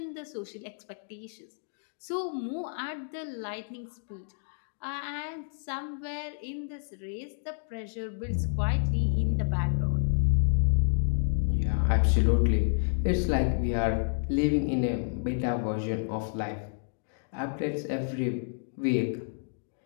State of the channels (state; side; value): silent; right; digital silence